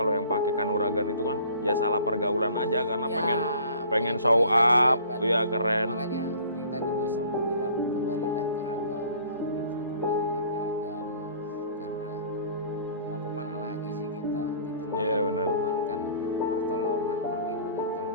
yang pakai kanuragan itu kan ya salah pergaulan aja karena ya, pengen show terlihat up, hebat. ya keren. Makanya yang tadi gue selalu bilang, kembalilah ke agama gitu loh, kembalilah ke agama, karena mau kemana lagi sih kita gitu loh. Iya, benar. Mohonkan pertolongan, perlindungan kalau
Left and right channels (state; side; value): inverted; both; correlation -0.50